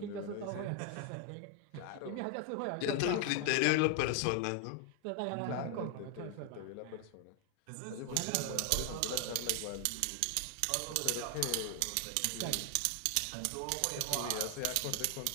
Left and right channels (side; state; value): both; different; correlation 0.00